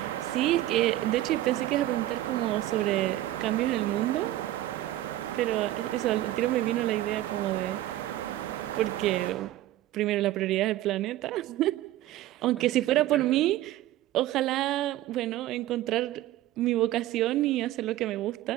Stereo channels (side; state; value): left; quieter; 14.8 dB